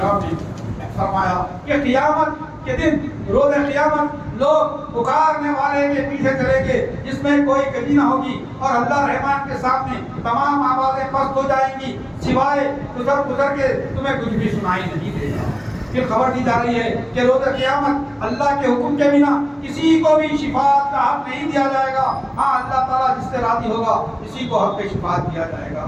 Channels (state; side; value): identical; both; correlation 1.00